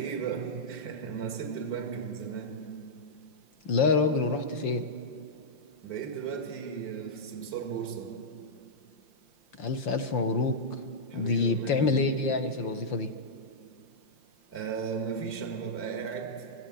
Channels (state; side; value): late; right; 5.8 ms